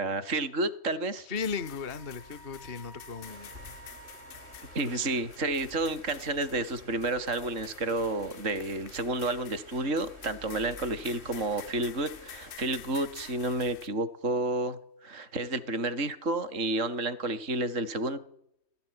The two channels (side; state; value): left; late; 3.1 ms